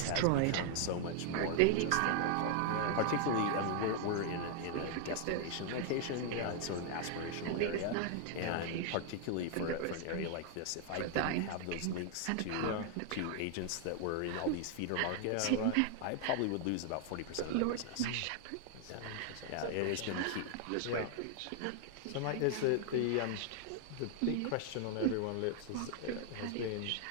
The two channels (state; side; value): different; both; correlation 0.00